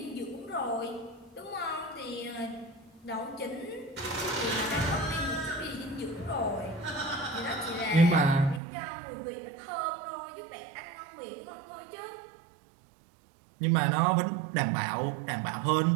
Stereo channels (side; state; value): left; drops out; at 8.6 s